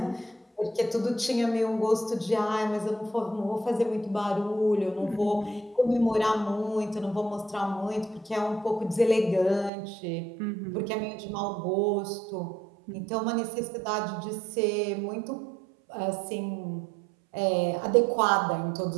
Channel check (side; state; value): left; drops out; at 9.7 s